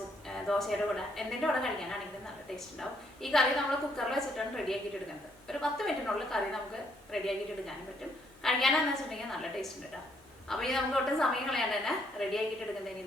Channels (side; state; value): both; normal; correlation 0.71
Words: ദോശയുടെ കൂടെ എന്തിൻ്റെ കൂടെ കഴിക്കാനാണെങ്കിലും നല്ല ടേസ്റ്റ് ഉണ്ടാവും. ഈ കറി നമ്മൾ കുക്കറിൽ വെച്ചിട്ടാണ് റെഡിയാക്കിയിട്ട് എടുക്കുന്നത്. ഒരു 10 മിനിറ്റിനുള്ളിൽ കറി നമുക്ക് റെഡിയാക്കിയിട്ട് എടുക്കാനും പറ്റും. കഴിക്കാനെന്ന് വെച്ചിട്ടുണ്ടെങ്കിൽ നല്ല ടേസ്റ്റ് ഉണ്ട് കേട്ടോ. അപ്പോൾ ഈ നമുക്ക് ഒട്ടും സമയം കളയാണ്ട് തന്നെ റെഡിയാക്കിയിട്ട്